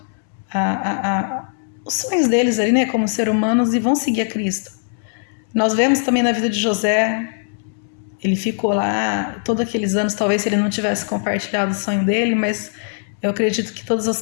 os sonhos deles ali, né, como ser humanos, e vão seguir a Cristo. Nós vemos também na vida de José, ele ficou lá todos aqueles anos, talvez se ele não tivesse compartilhado o sonho dele, mas eu acredito que todas as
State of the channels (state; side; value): silent; right; 66 dB below the other